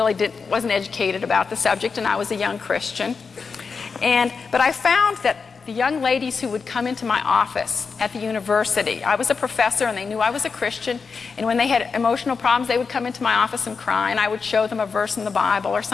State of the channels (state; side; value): quieter; right; 5.2 dB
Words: wasn't educated about the subject, and I was a young Christian. But I found that the young ladies who would come into my office at the university, I was a professor and they knew I was a Christian, and when they had emotional problems, they would come into my office and cry, and I would show them a verse in the Bible or